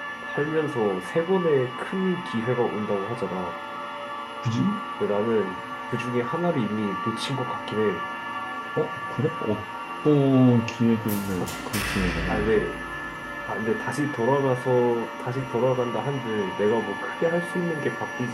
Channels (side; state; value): both; identical; correlation 1.00